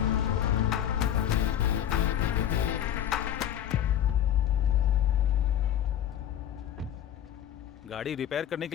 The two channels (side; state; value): right; quieter; 10.6 dB